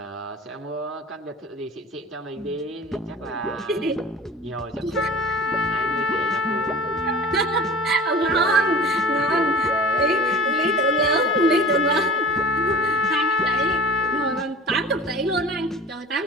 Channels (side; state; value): both; normal; correlation 0.39